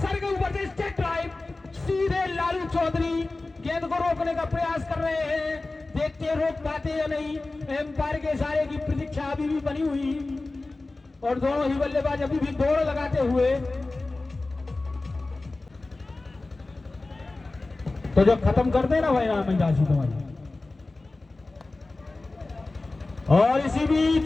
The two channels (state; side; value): quieter; right; 3.2 dB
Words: के ऊपर से स्टेट ड्राइव, सीधे लालू चौधरी गेंद को रोकने का प्रयास कर रहे हैं। देखते रोक पाते या नहीं, एम्पायर के इशारे की प्रतीक्षा अभी भी बनी हुई, और दोनों ही बल्लेबाज अभी भी दौड़ लगाते हुए। तो जो खत्म कर देना भाई नाम राशि तुम्हारी। और इसी